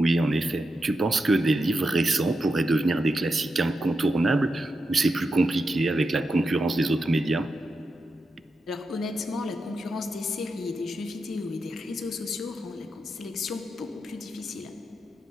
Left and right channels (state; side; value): normal; both; correlation 0.87